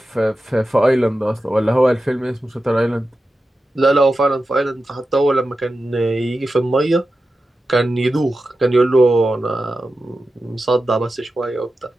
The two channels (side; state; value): both; normal; correlation 0.92